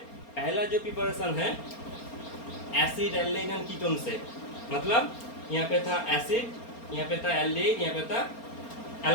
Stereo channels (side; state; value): right; late; 4.3 ms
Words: पहला जो प्रिपरेशन है एसिड एल्डिहाइड एंड कीटोन से, मतलब यहाँ पे था एसिड, यहाँ पे था एल्डिहाइड, यहाँ पे था